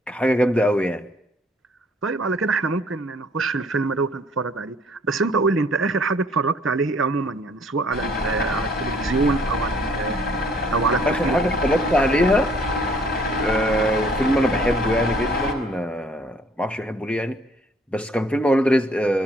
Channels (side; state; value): both; normal; correlation 0.60